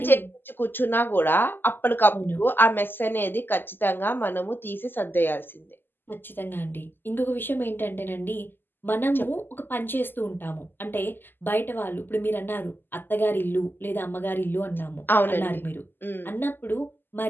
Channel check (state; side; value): late; right; 0.094 ms